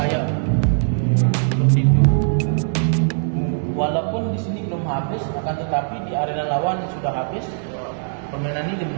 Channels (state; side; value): silent; left; digital silence